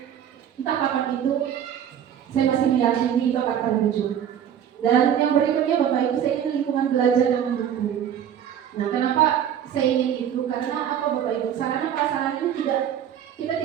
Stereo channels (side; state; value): left; quieter; 9.5 dB